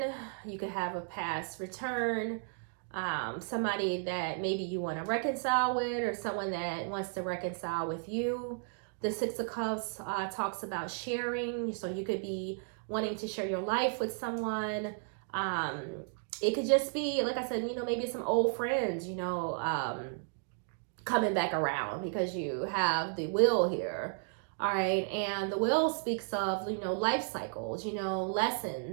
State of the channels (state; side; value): silent; left; 55 dB below the other